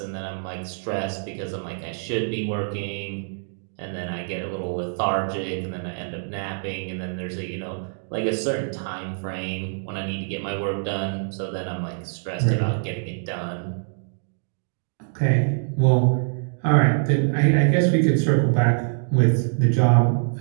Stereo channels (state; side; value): silent; left; digital silence